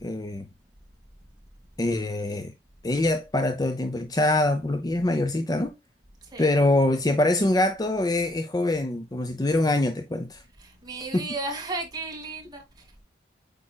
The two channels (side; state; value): both; normal; correlation 0.68